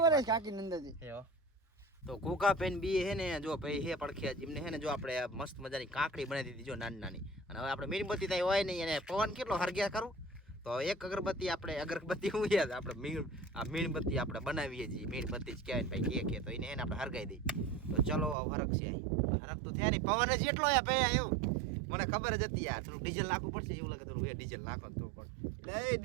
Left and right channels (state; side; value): drops out; left; at 18.4 s